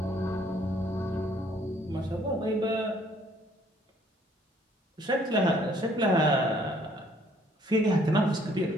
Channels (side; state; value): both; normal; correlation 0.62